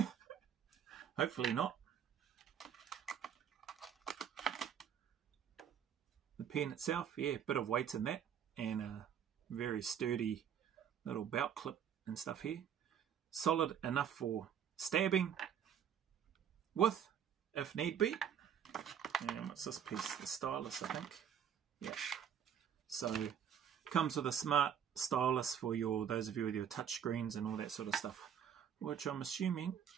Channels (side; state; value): left; quieter; 8.6 dB